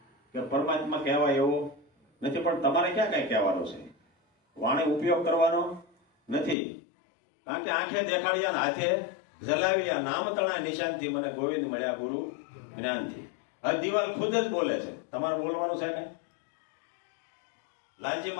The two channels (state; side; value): drops out; right; at 6.6 s